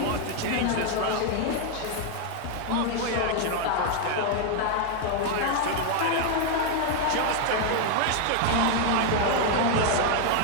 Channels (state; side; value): different; both; correlation 0.01